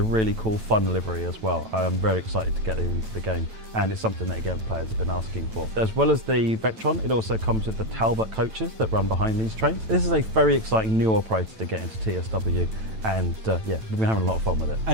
really cool, fun livery as well. I am very excited to get it into the game, and it's something that, again, players have been asking for. As well as the Vectron, it also comes with the Talbot coaches that run behind these trains. This is a very exciting new operator to get into TSW, and yeah, we've been having a lot of fun with it.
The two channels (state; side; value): late; left; 9.0 ms